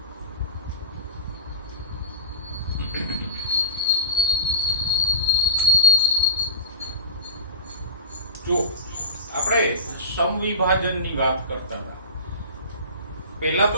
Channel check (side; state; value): both; inverted; correlation -0.32